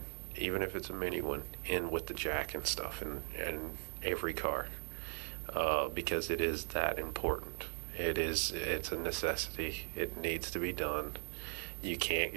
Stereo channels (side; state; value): left; silent; 52 dB below the other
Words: even if it's a mini one, in with the jack and stuff in every car, because it is that important. It's a necessity. It needs to be done. You can't